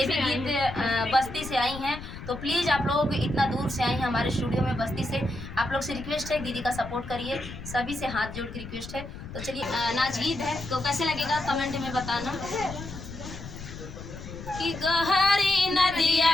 भी गीत बस्ती से आई हैं, तो प्लीज़ आप लोग इतना दूर से आई हैं हमारे स्टूडियो में बस्ती से। आप लोग से रिक्वेस्ट है, दीदी का सपोर्ट करिए, सभी से हाथ जोड़ के रिक्वेस्ट है। तो चलिए नाच गीत है, तो कैसे लगेगा कमेंट में बताना। कि गहरी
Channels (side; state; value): left; noise; rumble, 11 dB below the sound